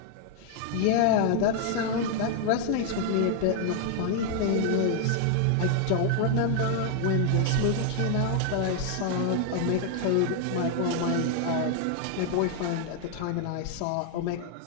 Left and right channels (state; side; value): different; both; correlation 0.00